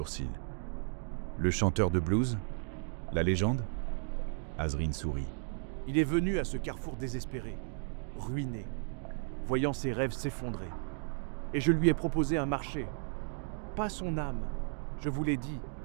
Le chanteur de blues? La légende? Azrine sourit. Il est venu à ce carrefour désespéré, ruiné, voyant ses rêves s'effondrer. Et je lui ai proposé un marché. Pas son âme. Je vous l'ai dit,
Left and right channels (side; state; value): left; silent; 55 dB below the other